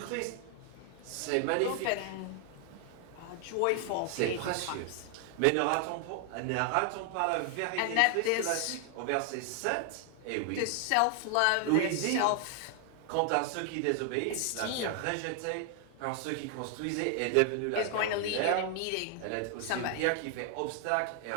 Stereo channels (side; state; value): both; different; correlation 0.00